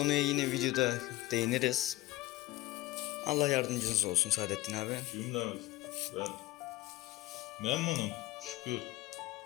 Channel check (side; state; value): right; quieter; 17.7 dB